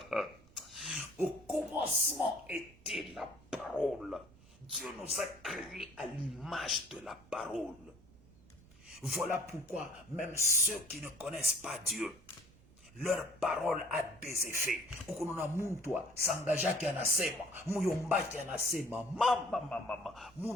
Au commencement était la parole. Dieu nous a créés à l'image de la parole. Voilà pourquoi même ceux qui ne connaissent pas Dieu, leur parole a des effets. Ukununa muntu sangajaki anasema, muyombaki anasema, mama,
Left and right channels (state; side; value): noise; right; rumble, 24 dB below the sound